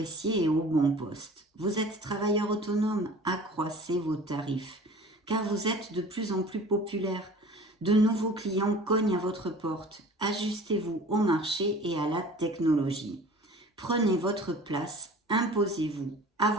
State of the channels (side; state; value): both; normal; correlation 0.44